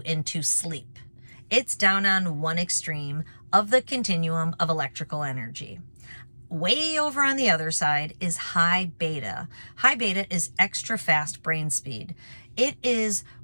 into sleep. It's down on one extreme of the continuum of electrical energy. Way over on the other side is high beta. High beta is extra fast brain speed. It is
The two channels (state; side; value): inverted; both; correlation -1.00